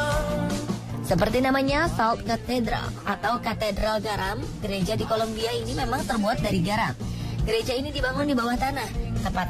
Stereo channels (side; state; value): both; identical; correlation 1.00